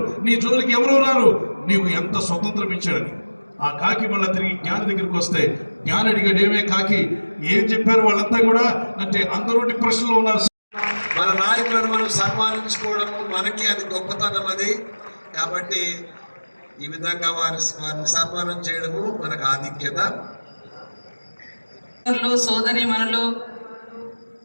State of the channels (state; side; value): inverted; both; correlation -1.00